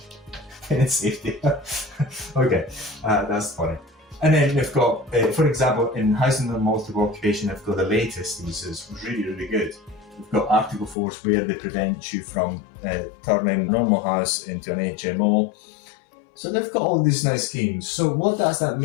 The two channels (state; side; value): drops out; right; at 11.0 s